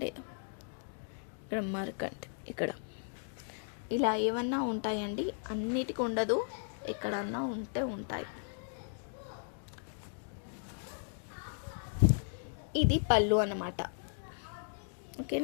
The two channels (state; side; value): silent; right; digital silence